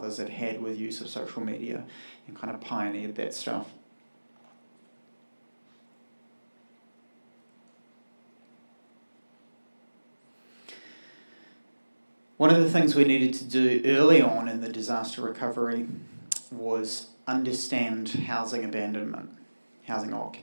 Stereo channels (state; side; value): inverted; both; correlation -1.00